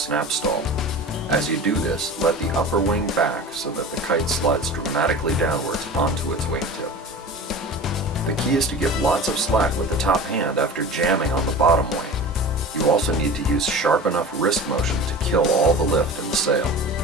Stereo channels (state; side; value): normal; both; correlation 0.35